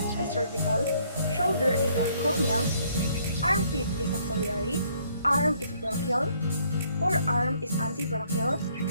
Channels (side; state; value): both; inverted; correlation -0.66